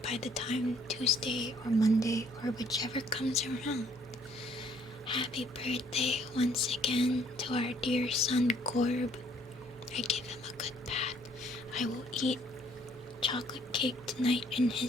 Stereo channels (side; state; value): both; normal; correlation 0.63